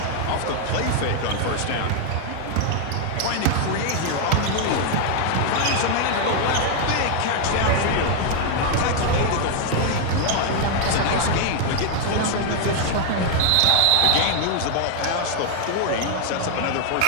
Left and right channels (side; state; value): both; different; correlation 0.00